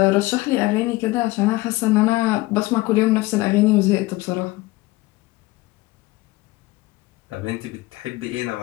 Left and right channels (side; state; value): right; quieter; 20.3 dB